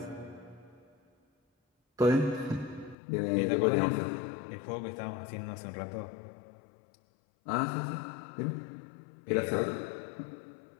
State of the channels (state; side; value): drops out; right; at 3.0 s